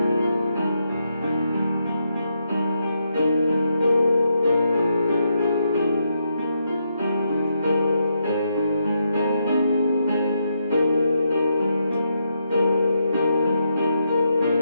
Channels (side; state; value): both; inverted; correlation -0.80